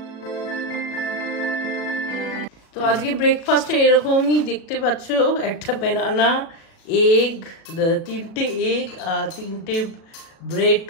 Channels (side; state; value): right; late; 36 ms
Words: তো আজকে ব্রেকফাস্টে এরকমই দেখতে পাচ্ছ, একটা ব্যানানা, এগ, 3টে এগ আর 3টে ব্রেড